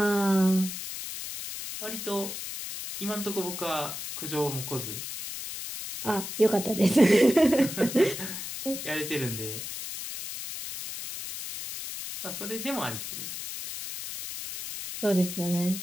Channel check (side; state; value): left; noise; hiss, 7 dB below the sound